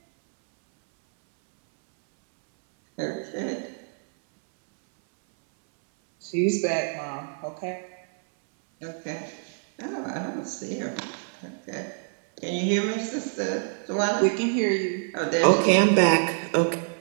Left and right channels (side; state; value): left; silent; 61 dB below the other